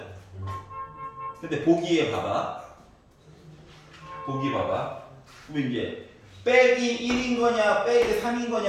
근데 보기에 봐봐. 그럼 이제 빼기 1인 거냐, 빼기 3인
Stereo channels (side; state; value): both; identical; correlation 1.00